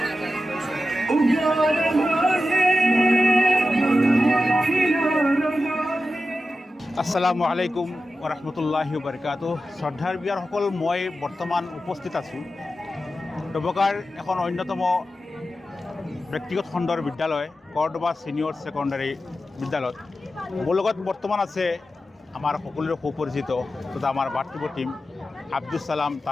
আলাইকুম ওৰহমতুল্লাহি ওবাৰকাতুহ। শ্ৰদ্ধাৰ বিয়াৰ সকল মই বৰ্তমান উপস্থিত আছো ডবকাৰ এখন অন্যতম ব্যক্তিগত খণ্ডৰ বিদ্যালয় কৰ্দবা সিনিয়ৰ সেকেন্ডাৰী বিদ্যালয়ত মোৰ লগত বৰ্তমান আছে আমাৰ সকলোৰে সুপৰিচিত তথা আমাৰ বাৰ্তিব টিম আব্দুল সালাম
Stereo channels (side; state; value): both; normal; correlation 0.92